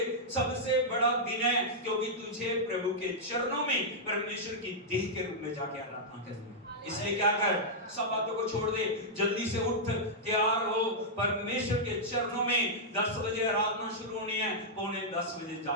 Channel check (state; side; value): normal; both; correlation -0.08